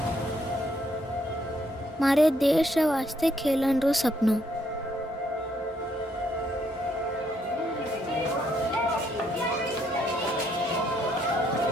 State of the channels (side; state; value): both; normal; correlation 0.72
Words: मारे देश वास्ते खेलन रो सपनो।